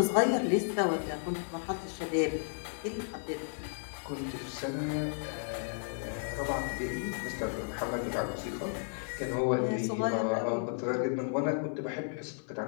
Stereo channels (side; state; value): right; silent; digital silence